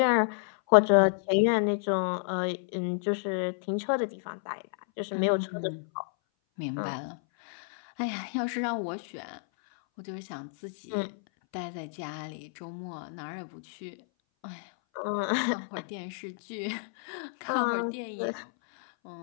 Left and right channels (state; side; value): silent; right; 58 dB below the other